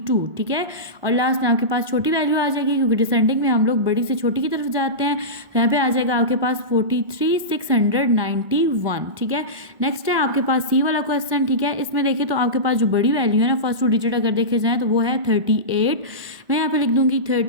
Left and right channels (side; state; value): left; late; 1.0 ms